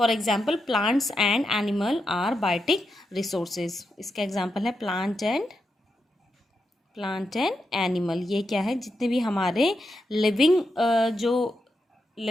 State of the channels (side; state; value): both; normal; correlation 0.85